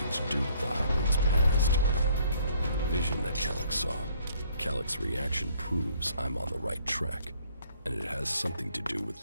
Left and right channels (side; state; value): both; inverted; correlation -0.62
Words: to do with the hybrid's past. The vision that Elex saw. Alex's reaction proves I'm on the right track, and it has something to do with